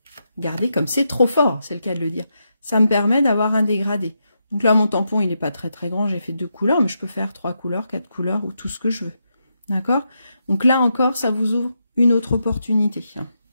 regardez comme c'est trop fort, c'est le cas de le dire, ça me permet d'avoir un dégradé. Donc là, mon tampon, il n'est pas très très grand, j'ai fait 2 couleurs, mais je peux faire 3 couleurs, 4 couleurs, ou tout ce que je veux, d'accord? Donc là encore, ça vous ouvre une autre opportunité.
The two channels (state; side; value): inverted; both; correlation -0.83